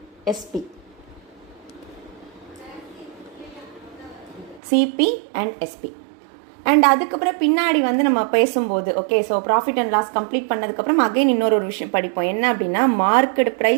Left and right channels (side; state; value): left; drops out; at 4.6 s